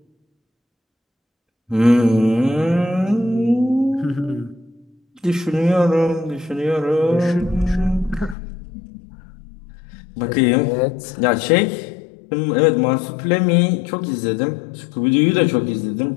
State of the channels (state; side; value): drops out; right; at 8.3 s